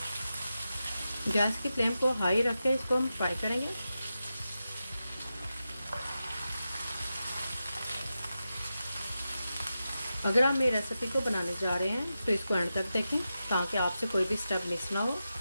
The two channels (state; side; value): inverted; both; correlation -0.90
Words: गैस की फ्लेम को हाई रख के इसको हम फ्राई करेंगे। अगर आप मेरी रेसिपी को बनाने जा रहे हैं तो इसको एंड तक देखें, ताकि आपसे कोई भी स्टेप मिस ना हो।